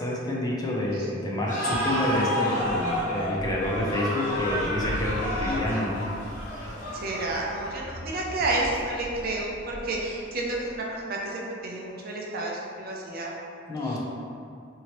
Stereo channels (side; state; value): both; normal; correlation 0.26